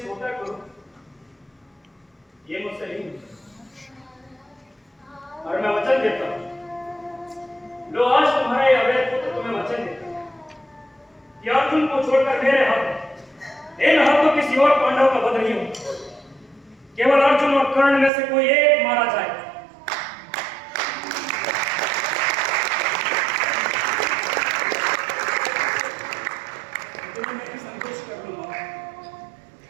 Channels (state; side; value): drops out; left; at 18.1 s